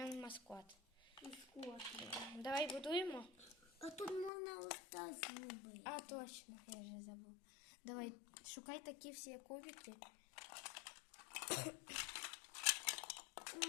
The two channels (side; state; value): right; drops out; at 4.3 s